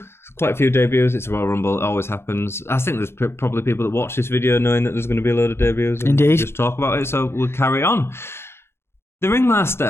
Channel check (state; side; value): late; right; 0.12 ms